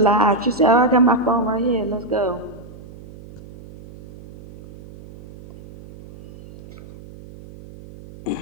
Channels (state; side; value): noise; right; hum, 19 dB below the sound